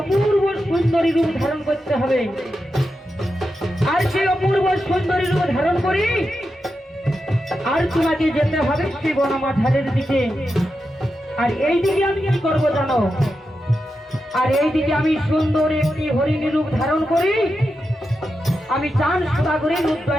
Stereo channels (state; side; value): normal; both; correlation 0.88